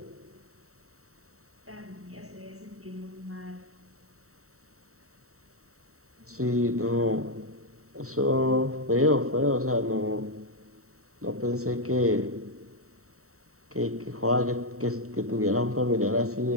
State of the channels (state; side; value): late; left; 0.64 ms